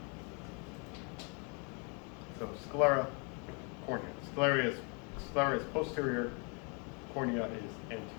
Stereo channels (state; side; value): quieter; right; 35.2 dB